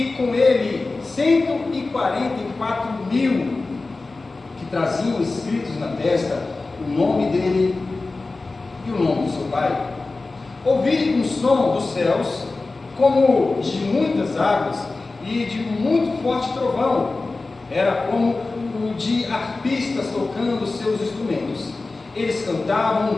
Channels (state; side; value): quieter; right; 3.5 dB